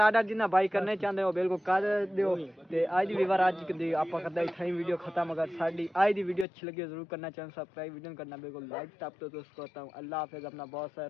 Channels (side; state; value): right; drops out; at 6.5 s